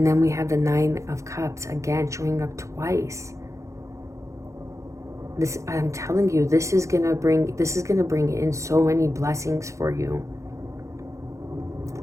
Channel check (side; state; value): left; late; 0.15 ms